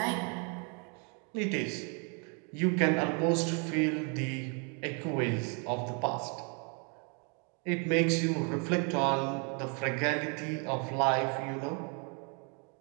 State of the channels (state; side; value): quieter; left; 35.9 dB